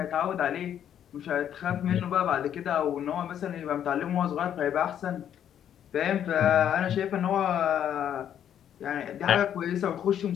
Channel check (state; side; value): quieter; right; 9.8 dB